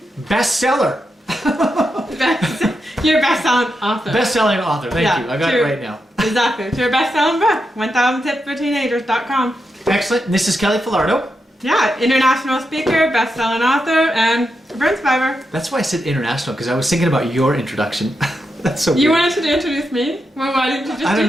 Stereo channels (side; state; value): both; normal; correlation 0.86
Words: bestseller. You're a best-selling author. Best-selling author, thank you. I got it right now. Exactly. It's your best-selling book, 1000tipsforteenagers.com. Excellent. And this is Kelly Falardeau. Yeah, international speaker, best-selling author, and burn survivor. That's why I said international, because I was thinking about your introduction. That's so weird. You wanted to introduce me? Well, why didn't you just do